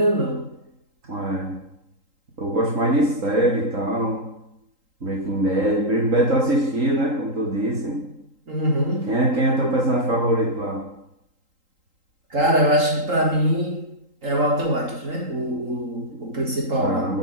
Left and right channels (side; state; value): left; late; 3.8 ms